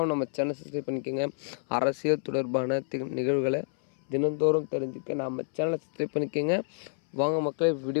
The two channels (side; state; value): right; silent; 59 dB below the other